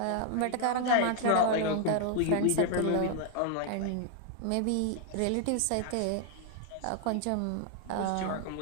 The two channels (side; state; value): both; different; correlation 0.00